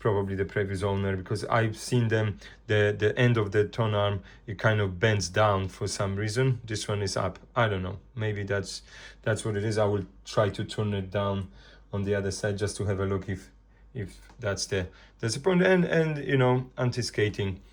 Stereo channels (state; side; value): identical; both; correlation 1.00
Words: the previous owner, because I've seen them, the end of the tone arm, it kind of bends down for some reason. This one is up. I don't know, maybe that's what it is. I will try to turn it down on the other side just to have a look if that's the point. And you know, anti-skating